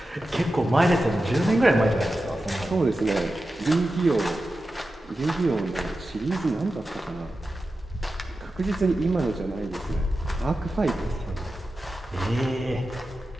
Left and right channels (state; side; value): normal; both; correlation 0.92